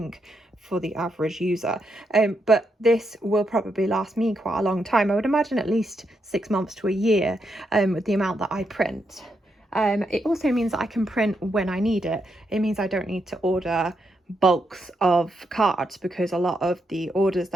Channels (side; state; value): both; normal; correlation 0.81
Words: for the average user, but this will probably last me quite a long time. I would imagine at least 6 months to a year, with the amount that I print. It also means that I can print when I need it. It means I don't need to order bulks of cards, because a lot of the orders